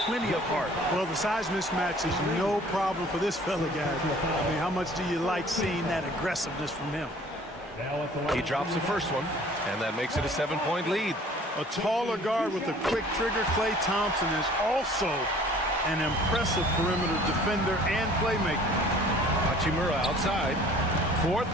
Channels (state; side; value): normal; both; correlation 0.51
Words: plenty of heart. Well, the size mismatch is no problem for this fella, guys. I mean, how much do you like seeing that aggressiveness from him? He drops the first one, and that makes it a 7-point lead. A taller guard with a quick trigger, Klay Thompson, is also an impressive perimeter defender and playmaker. Hachimura outside.